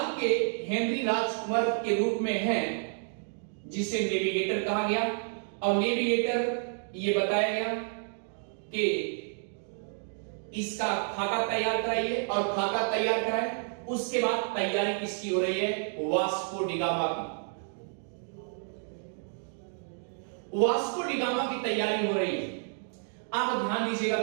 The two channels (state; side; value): silent; left; 58 dB below the other